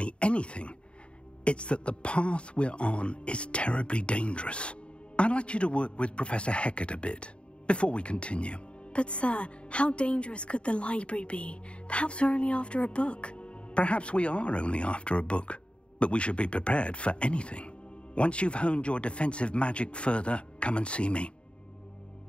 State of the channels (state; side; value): late; right; 0.057 ms